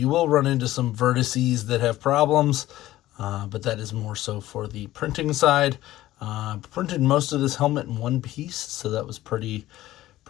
will run into some vertices that have problems, but that is more so for the printing side. Printed most of this helmet in one piece, so that was pretty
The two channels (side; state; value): right; quieter; 15.3 dB